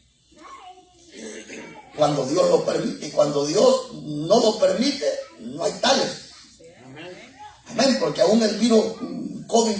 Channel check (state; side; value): identical; both; correlation 1.00